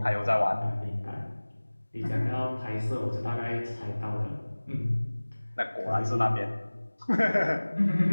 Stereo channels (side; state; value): both; inverted; correlation -1.00